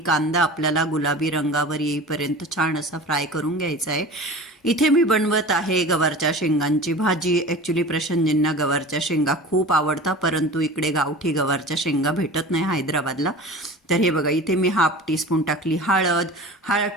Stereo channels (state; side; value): normal; both; correlation 0.36